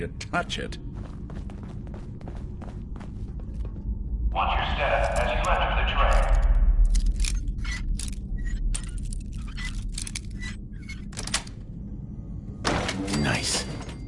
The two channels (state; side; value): identical; both; correlation 1.00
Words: touch it. Watch your step as you enter the tray. Nice.